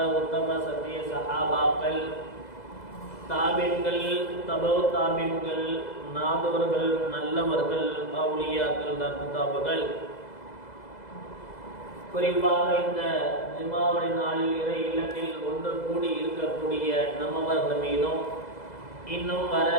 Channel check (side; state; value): right; late; 2.0 ms